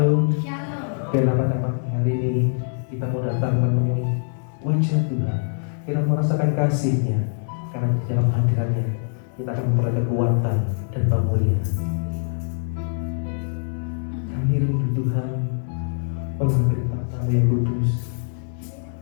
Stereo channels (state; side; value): silent; right; digital silence